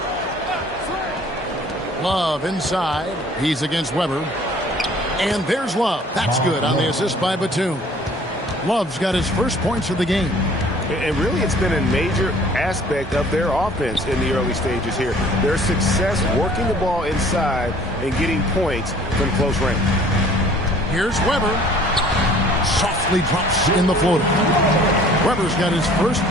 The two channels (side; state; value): both; normal; correlation 0.53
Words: Love inside. He's against Weber. And there's Love. That's good on the assist by Batum. Love's got his first points of the game. And really, it's been a major aspect of their offense in the early stages here. Their success working the ball inside and getting points from close range. Here's Weber. Softly drops in the floater. Weber's got his first